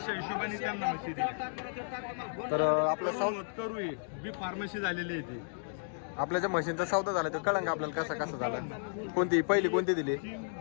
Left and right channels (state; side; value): silent; right; digital silence